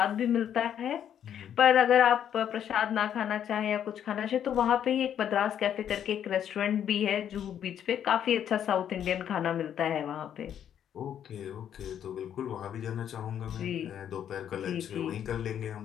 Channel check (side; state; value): right; quieter; 9.5 dB